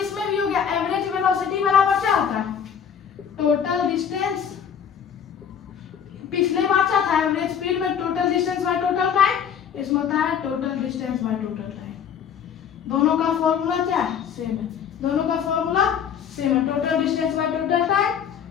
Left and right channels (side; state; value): right; quieter; 7.9 dB